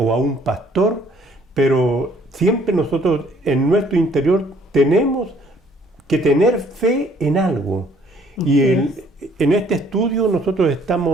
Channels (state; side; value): normal; both; correlation 0.62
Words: a un pastor, pero siempre nosotros en nuestro interior tenemos que tener fe en algo. Y en este estudio nosotros